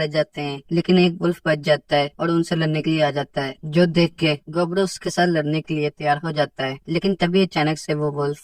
जाते हैं लेकिन एक वुल्फ बच जाता है और उनसे लड़ने के लिए आ जाता है, जो देख के गोब्लू उसके साथ लड़ने के लिए तैयार हो जाता है। लेकिन तभी अचानक से वो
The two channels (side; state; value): both; identical; correlation 1.00